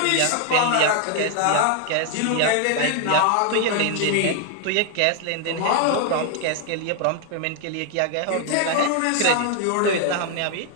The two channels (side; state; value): both; different; correlation 0.00